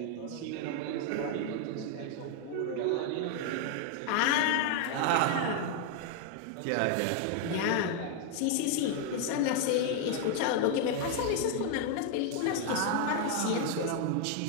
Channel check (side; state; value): both; different; correlation 0.00